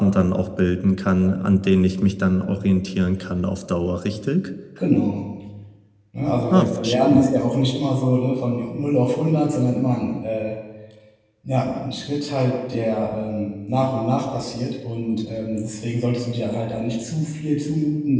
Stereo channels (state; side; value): identical; both; correlation 1.00